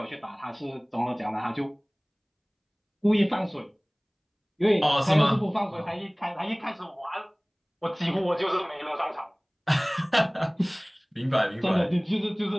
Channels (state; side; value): identical; both; correlation 1.00